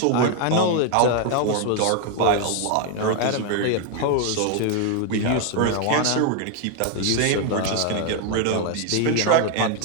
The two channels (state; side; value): different; both; correlation 0.00